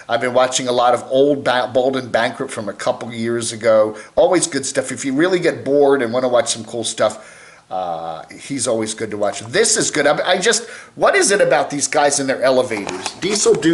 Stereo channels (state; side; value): identical; both; correlation 1.00